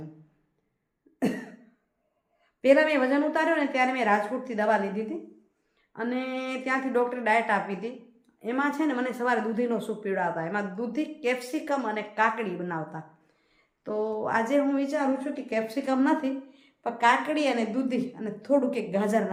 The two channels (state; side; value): identical; both; correlation 1.00